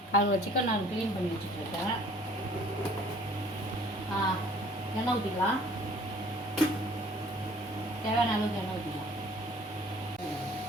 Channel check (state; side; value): normal; both; correlation 0.54